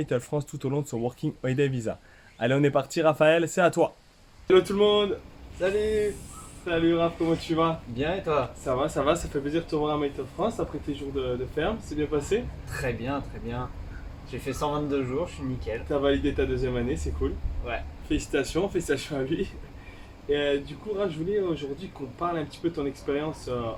France tout au long de son Working Holiday Visa. Allez on est parti Raphaël, c'est à toi. Hello tout le monde. Salut. Salut Raph, comment tu vas? Bien et toi? Ça fait plaisir de te revoir à Maïtel France après tes jours de ferme, c'est bien passé? Très bien, très bien. J'ai fait 122 jours, je suis nickel. T'as validé ta deuxième année, c'est cool. Ouais. Félicitations à lui. Et du coup, Raph, je voulais aujourd'hui qu'on parle un petit peu de ton expérience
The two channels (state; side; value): identical; both; correlation 1.00